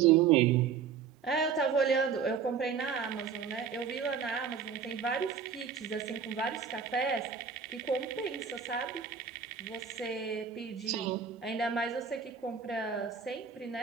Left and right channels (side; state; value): left; quieter; 6.7 dB